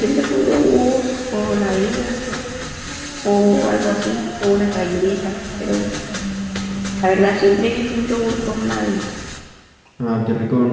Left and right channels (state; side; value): identical; both; correlation 1.00